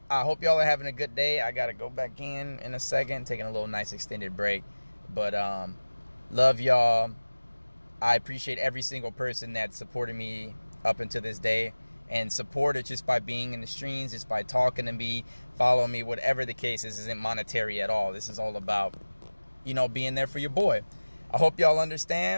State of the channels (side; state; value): both; inverted; correlation -1.00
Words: I hope y'all are having a good day. I gotta go back in a second, taking a little nice extended break. But love y'all. I appreciate every single person that supported me up until this day, and support it just by being in the streams, just by talking to me, following me, whatever the case is. Isn't monetary at all. This is all about, you know, being there for your boy. I hope y'all